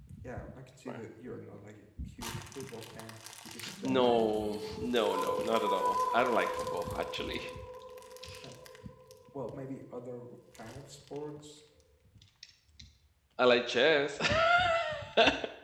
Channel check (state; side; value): identical; both; correlation 1.00